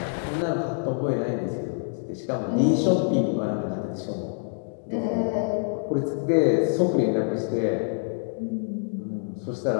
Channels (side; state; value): right; silent; digital silence